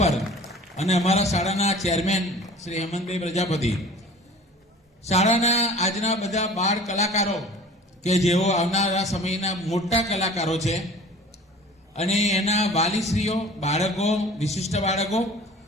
અને અમારા શાળાના ચેરમેન શ્રી હેમંતભાઈ પ્રજાપતિ, શાળાના આજના બધા બાળ કલાકારો કે જેઓ આવનારા સમયના મોટા કલાકારો છે, અને એના વાલીશ્રીઓ, બાળકો, વિશિષ્ટ બાળકો,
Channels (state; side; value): normal; both; correlation 0.44